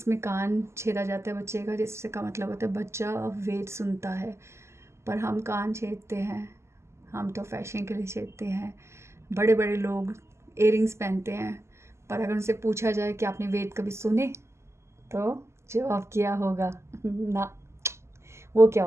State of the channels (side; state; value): left; late; 0.13 ms